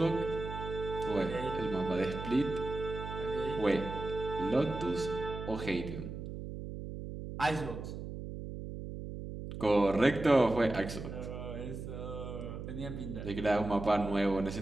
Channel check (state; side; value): noise; right; hum, 8 dB below the sound